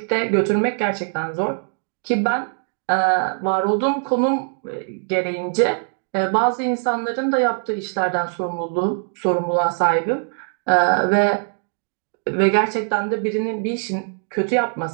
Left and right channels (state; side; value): silent; left; 59 dB below the other